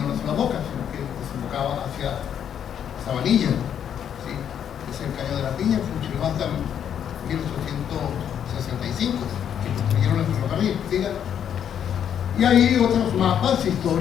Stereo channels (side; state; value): right; quieter; 9.0 dB